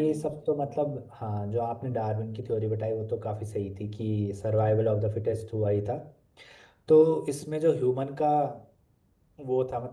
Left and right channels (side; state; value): both; identical; correlation 1.00